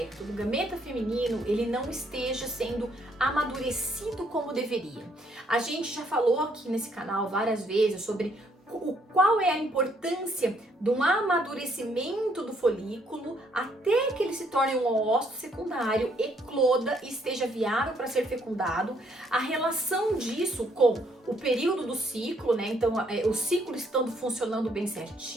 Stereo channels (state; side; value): normal; both; correlation 0.69